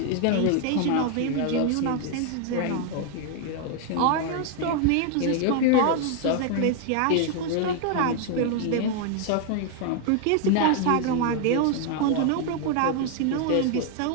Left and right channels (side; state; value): both; different; correlation 0.01